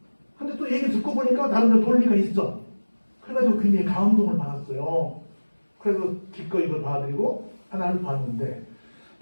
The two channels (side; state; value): both; inverted; correlation -1.00